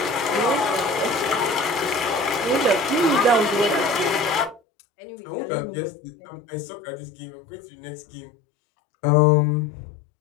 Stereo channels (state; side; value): drops out; right; at 4.6 s